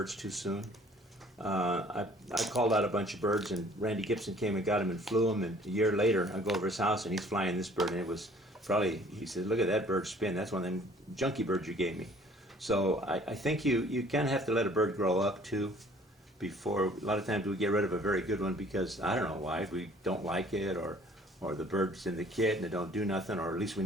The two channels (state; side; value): normal; both; correlation 0.55